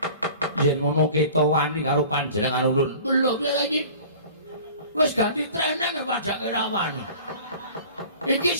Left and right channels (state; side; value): inverted; both; correlation -0.44